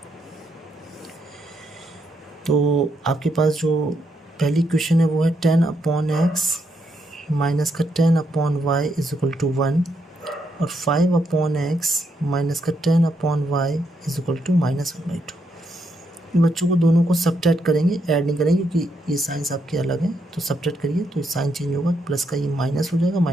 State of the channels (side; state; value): both; normal; correlation 0.78